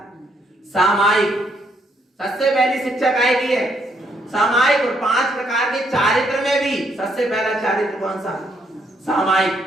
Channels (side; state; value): both; normal; correlation 0.72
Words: सामायिक। सबसे पहली शिक्षा काय की है? सामायिक। और 5 प्रकार के चारित्र में भी सबसे पहला चारित्र कौन सा? सामायिक।